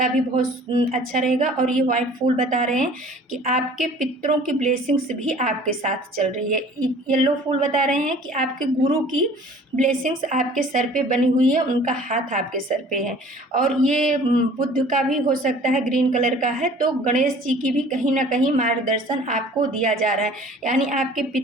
भी बहुत अच्छा रहेगा। और ये वाइट फूल बता रहे हैं कि आपके पितरों की ब्लेसिंग्स भी आपके साथ चल रही है। येलो फूल बता रहे हैं कि आपके गुरु की ब्लेसिंग्स आपके सर पे बनी हुई है, उनका हाथ आपके सर पे है। और ये बुद्ध का भी हो सकता है, ग्रीन कलर का है, तो गणेश जी की भी कहीं ना कहीं मार्गदर्शन आपको दिया जा रहा है। यानी आपके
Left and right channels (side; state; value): both; normal; correlation 0.49